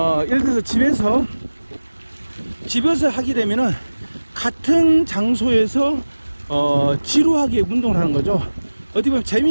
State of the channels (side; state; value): both; inverted; correlation -1.00